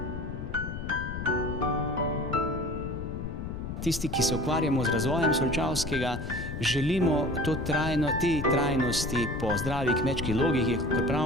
Tisti, ki se ukvarjamo z razvojem Solčavskega, želimo te trajnosti po zdravi kmečki logiki, kot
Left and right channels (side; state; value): left; noise; rumble, 6 dB below the sound